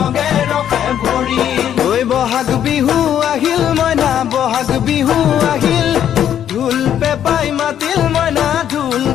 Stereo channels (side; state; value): right; quieter; 10.0 dB